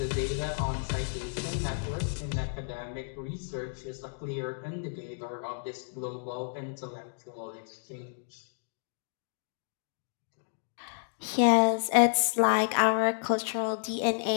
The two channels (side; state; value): right; silent; digital silence